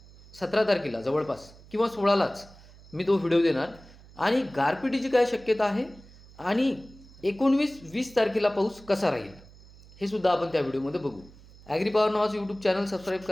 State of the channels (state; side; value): noise; right; hum, 22 dB below the sound